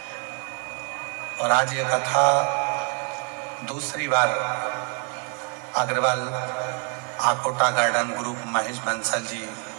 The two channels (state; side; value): quieter; left; 37.5 dB